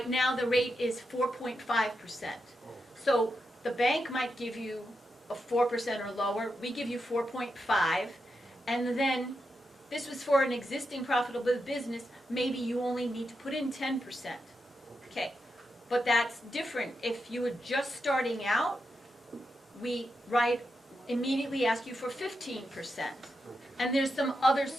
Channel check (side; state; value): both; normal; correlation 0.86